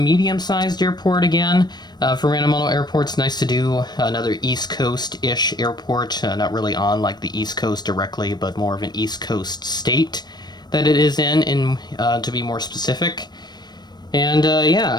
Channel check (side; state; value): right; late; 0.20 ms